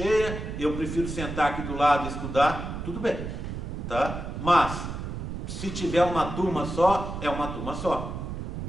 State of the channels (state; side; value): noise; right; rumble, 6 dB below the sound